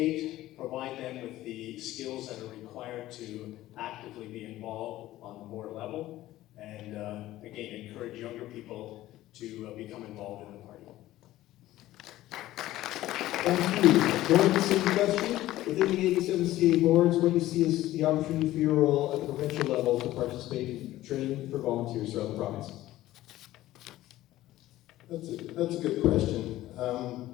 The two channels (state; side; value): quieter; right; 15.4 dB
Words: provide them with the skills that are required to actively be involved on the board level, and again, encourage younger people to become involved in the party. Thank you. Going to the same question. Within the 87 CA boards, what do you see as the opportunity for your role at the provincial level to participate in training for volunteers throughout the province? That's a good question.